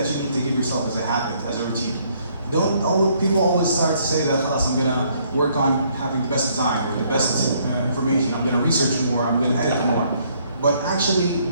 you need to give yourself as a habit, as a routine. People always start to say that, I'm gonna work on having the best design or the best information, I'm gonna research more, I'm gonna edit more. But actually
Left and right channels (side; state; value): both; inverted; correlation -0.67